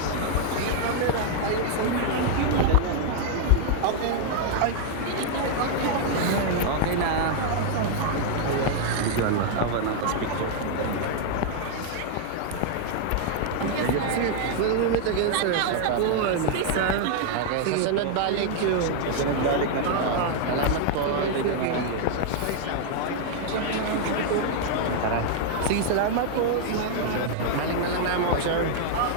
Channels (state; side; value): different; both; correlation -0.01